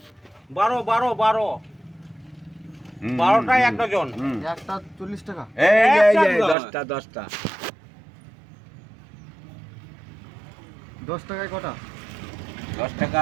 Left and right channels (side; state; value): left; drops out; at 6.6 s